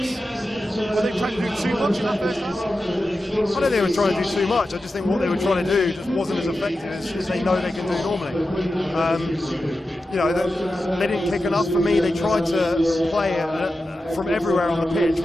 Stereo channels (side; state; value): both; normal; correlation 0.92